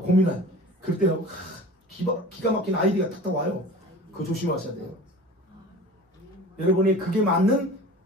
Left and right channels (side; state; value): both; normal; correlation 0.39